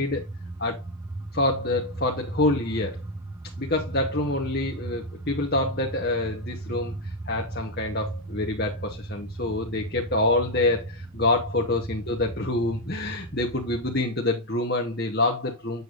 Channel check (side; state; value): both; normal; correlation 0.04